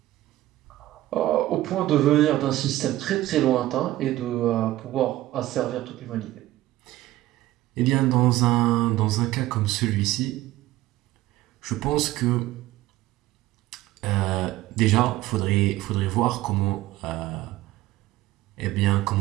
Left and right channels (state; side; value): quieter; left; 15.9 dB